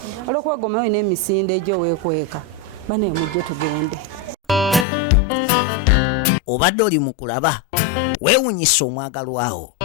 olwokuba gomayo n'emisinde egyo weekweka bane mujje tugende obadde oli mu kulaba weewunyisa omwagalwawo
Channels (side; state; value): right; drops out; at 4.9 s